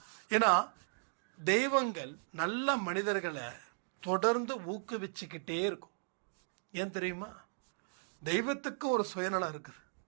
ஏன்னா தெய்வங்கள் நல்ல மனிதர்களை தொடர்ந்து ஊக்குவிச்சுக்கிட்டே இருக்கும். ஏன் தெரியுமா? தெய்வத்துக்கு ஒரு சுயநலம் இருக்குது.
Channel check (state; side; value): silent; left; digital silence